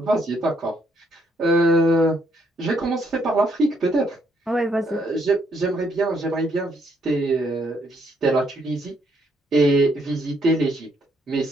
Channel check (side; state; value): both; normal; correlation 0.72